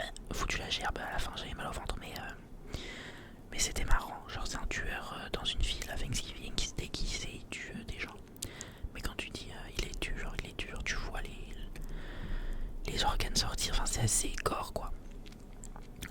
foutu la gerbe. À la fin, j'avais mal au ventre, mais c'était marrant. Genre, c'est un tueur dans une ville à Thanksgiving qui se déguise et il tue des gens. Mais quand tu dis il les tue, genre tu vois les organes sortir. Enfin, c'est assez gore, quoi.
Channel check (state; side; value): identical; both; correlation 1.00